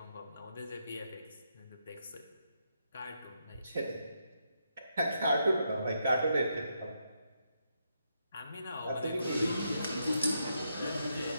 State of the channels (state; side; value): inverted; both; correlation -0.81